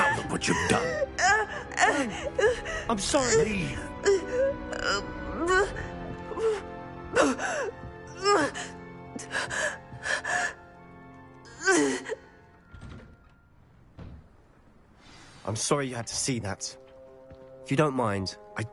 look what you've done. I'm sorry. Leave. I'm sorry you had to see that. If you don't mind, I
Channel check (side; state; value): both; identical; correlation 1.00